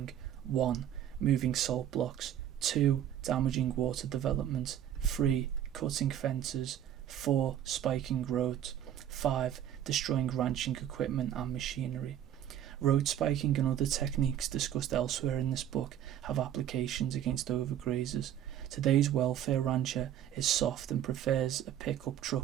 1. Moving salt blocks. 2. Damaging water development. 3. Cutting fences. 4. Spiking roads. 5. Destroying ranching equipment and machinery. Road spiking and other techniques discussed elsewhere in this book have applications against overgrazers. Today's welfare rancher is soft and prefers a pickup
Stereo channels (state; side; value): quieter; left; 10.7 dB